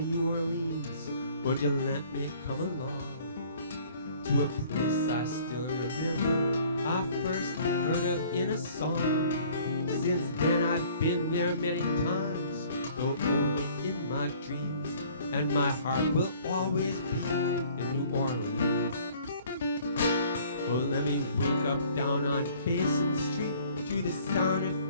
New Orleans, would you let me come along to a place I still remember I first heard of in a song? Since then I've been there many times, though only in my dreams, and my heart will always be in New Orleans. Oh, let me wake up down on Basin Street to the sound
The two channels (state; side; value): inverted; both; correlation -0.54